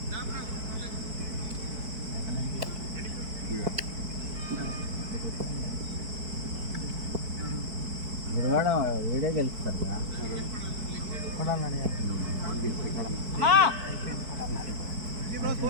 గురువాడ వీడే గెలుస్తారు కదా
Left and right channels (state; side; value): late; left; 4.5 ms